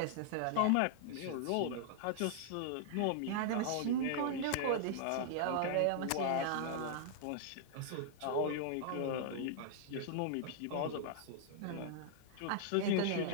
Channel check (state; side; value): different; both; correlation -0.01